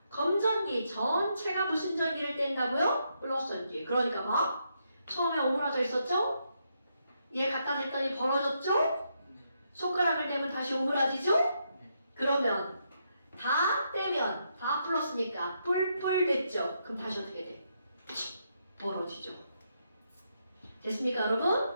검전기 전체가 무슨 전기를 뗀다고요? 플러스 전기. 그러니까 막 처음에 오므라져 있었죠? 얘 갖다 댔더니 벌어졌죠? 손가락을 대면 다시 오므라지죠? 그러면 다 떼면 다 플러스니까 뿔뿔 됐죠? 그럼 다시 어떻게 돼? 벌어지죠. 됐습니까,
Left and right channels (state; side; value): inverted; both; correlation -0.79